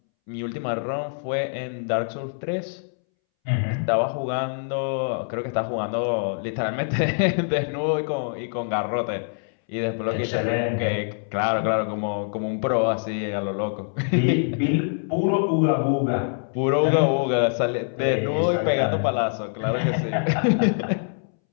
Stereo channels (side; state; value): right; silent; 62 dB below the other